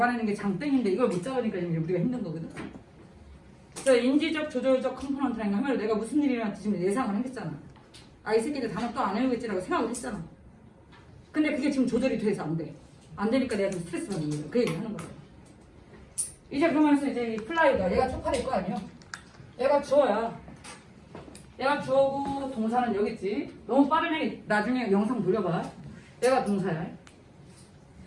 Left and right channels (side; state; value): both; identical; correlation 1.00